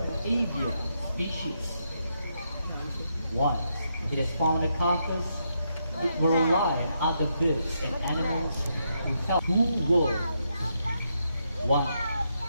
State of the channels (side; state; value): both; inverted; correlation -0.80